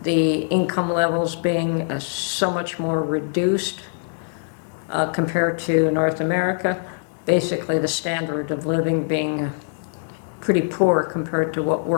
the income levels being so much more reduced compared to North America, basically the standard of living being pretty poor compared to what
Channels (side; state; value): right; silent; digital silence